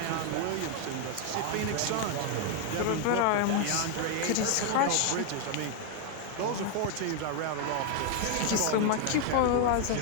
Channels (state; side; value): different; both; correlation 0.01